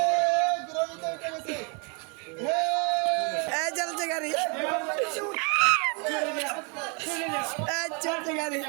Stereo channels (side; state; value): left; quieter; 34.0 dB